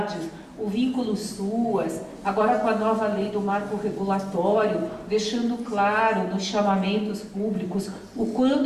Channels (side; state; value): both; identical; correlation 1.00